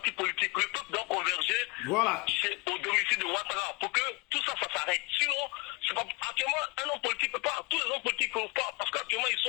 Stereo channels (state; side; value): quieter; right; 27.2 dB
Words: politique, le peuple doit converger au domicile de Ouattara pour que tout ça, ça s'arrête. Sinon, pas, actuellement, un homme politique peut pas, tous les hommes politiques ne peuvent pas, parce qu'actuellement ils